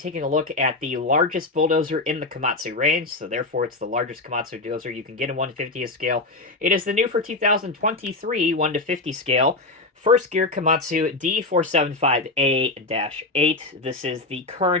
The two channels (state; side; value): quieter; right; 3.1 dB